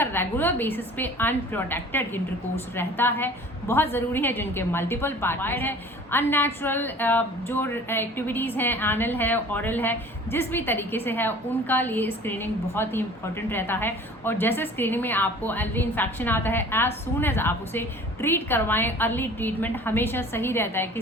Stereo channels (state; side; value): normal; both; correlation 0.46